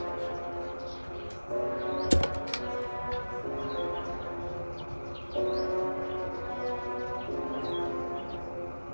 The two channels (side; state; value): both; inverted; correlation -1.00